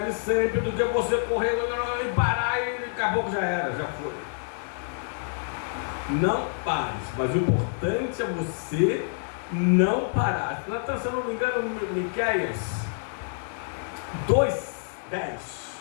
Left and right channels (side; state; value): right; silent; digital silence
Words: e sempre do que você correr e parar e daqui a pouco já era, já foi. Não pare, mas o importante é você não parar. Se eu não me engano, Miqueias 2:10.